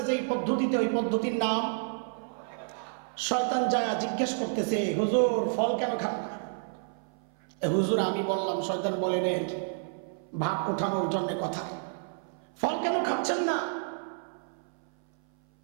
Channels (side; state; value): left; silent; 58 dB below the other